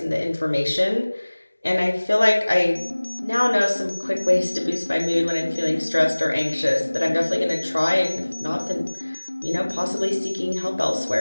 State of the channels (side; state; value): both; inverted; correlation -1.00